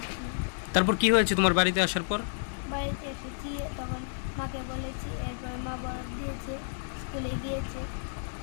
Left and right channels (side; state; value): right; silent; digital silence